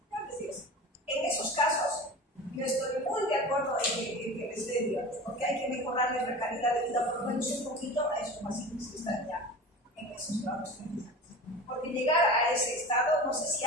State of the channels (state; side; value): normal; both; correlation 0.34